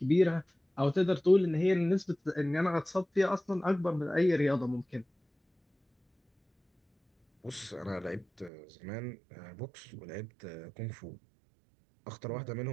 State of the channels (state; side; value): drops out; left; at 8.5 s